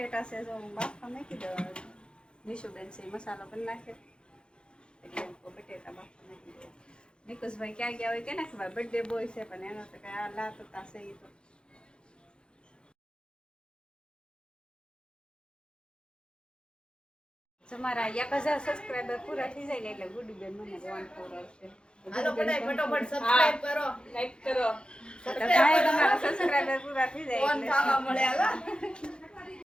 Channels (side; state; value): right; late; 0.052 ms